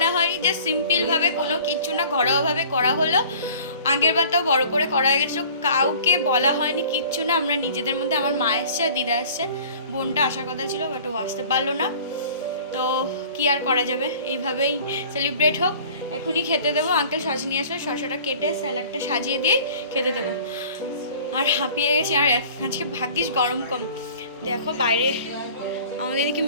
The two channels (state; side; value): inverted; both; correlation -0.47